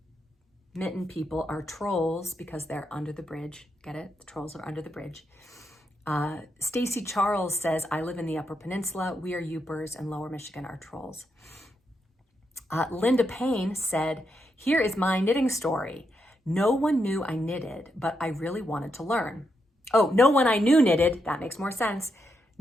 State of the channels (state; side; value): normal; both; correlation 0.82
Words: mitten people are trolls because they're under the bridge. Get it? The trolls are under the bridge. Stacy Charles says, I live in the Upper Peninsula. We are Yoopers and Lower Michigan are trolls. Linda Payne said, here is my knitting story. No one knew I knitted, but I really wanted to learn. Oh, no one I knew knitted. That makes more sense.